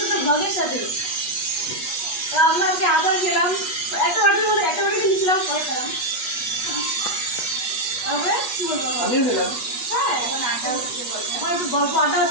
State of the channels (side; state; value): right; late; 8.3 ms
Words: ব্লগের সাথে। আমরা আজকে আদার খেলাম, একটা বাটির মধ্যে একটা বাটি নিয়েছিলাম, পরে খেলাম। তারপরে কি বলবো, আমিও খেলাম। হ্যাঁ এখন একটু গল্প আড্ডা